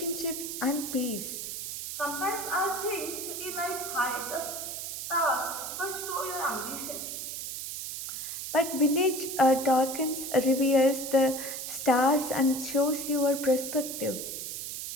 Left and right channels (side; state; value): right; noise; hiss, 6 dB below the sound